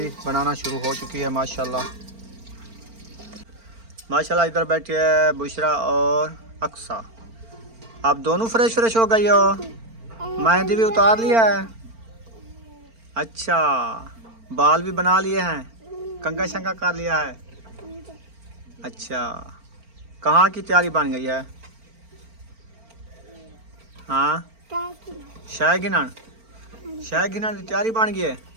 बनाना शुरू हो चुकी है। माशाल्लाह इधर बैठी है बुशरा और अक्सा। आप दोनों फ्रेश फ्रेश हो गई हो? मेहंदी भी उतार लिया है? अच्छा, बाल भी बना लिए हैं, कंघा शंघा कर लिया है? अच्छा, कहाँ की तैयारी बन गई है? हाँ, शाहगिनन शाहगिनन की तैयारी बन गई है।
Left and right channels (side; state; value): left; late; 4.4 ms